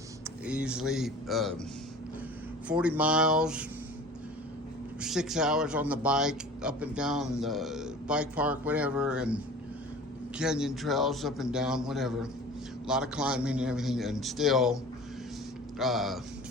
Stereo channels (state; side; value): normal; both; correlation 0.41